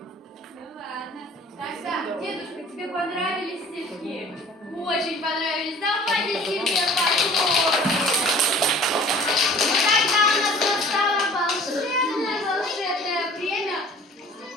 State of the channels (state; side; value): normal; both; correlation 0.48